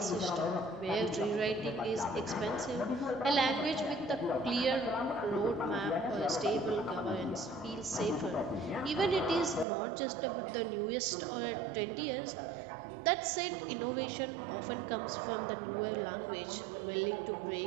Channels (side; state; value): left; drops out; at 9.7 s